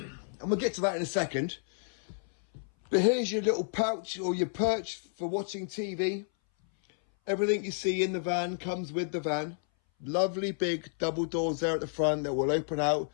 we'll get to that in a second. But here's your little pouch or your perch for watching TV. Everything you see in the van comes with the van. Lovely big double doors there at the front that will open out,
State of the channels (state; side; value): silent; right; 57 dB below the other